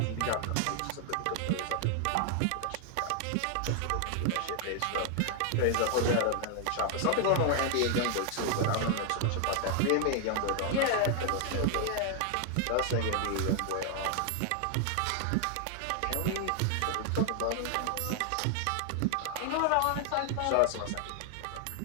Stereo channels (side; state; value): both; different; correlation 0.00